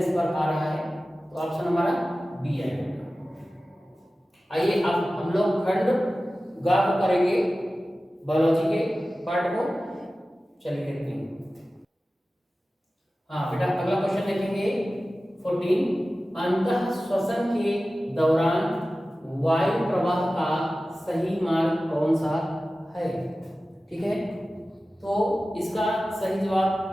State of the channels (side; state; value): both; normal; correlation 0.96